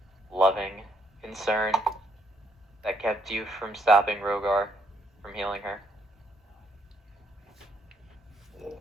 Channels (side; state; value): both; normal; correlation 0.71